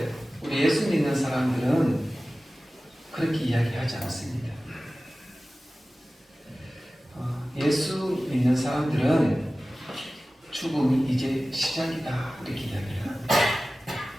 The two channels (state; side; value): normal; both; correlation 0.96